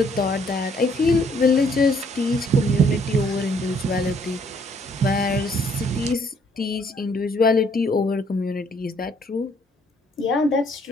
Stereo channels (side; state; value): both; normal; correlation 0.65